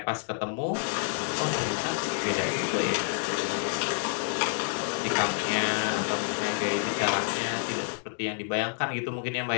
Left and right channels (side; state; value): right; silent; digital silence